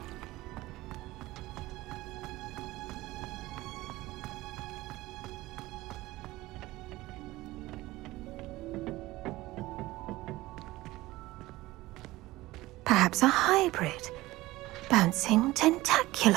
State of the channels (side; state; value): left; quieter; 18.4 dB